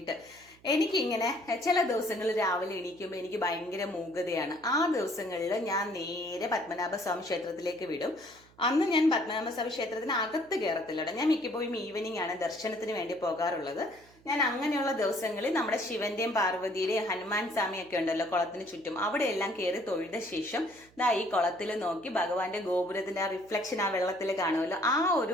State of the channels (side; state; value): right; noise; hum, 28 dB below the sound